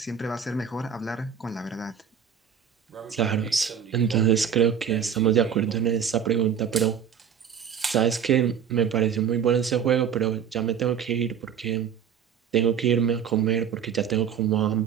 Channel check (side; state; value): left; quieter; 7.9 dB